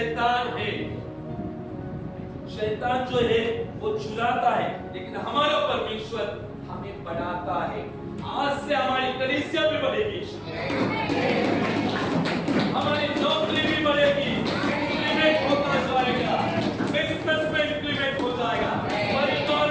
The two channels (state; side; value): identical; both; correlation 1.00